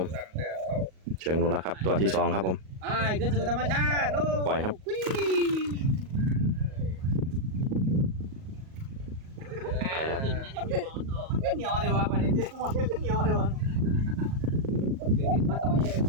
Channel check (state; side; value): late; left; 38 ms